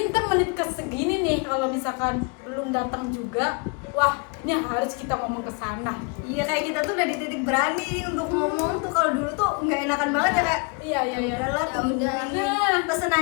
ntar menit ke segini nih, kalau misalkan belum datang juga, wah ini harus kita ngomong ke sana. Iya, kayak kita tuh udah di titik berani untuk ngomong tuh. Kalau dulu tuh nggak enakan banget ya, kayak Iya udahlah, Ya udah.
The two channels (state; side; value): quieter; right; 32.6 dB